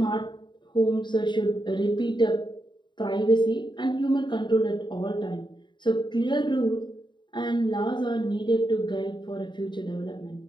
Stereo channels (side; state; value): right; late; 0.22 ms